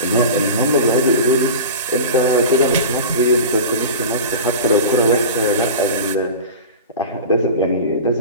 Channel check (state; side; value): inverted; both; correlation -0.32